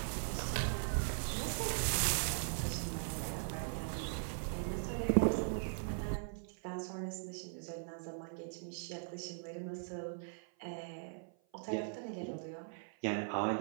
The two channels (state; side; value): silent; left; 51 dB below the other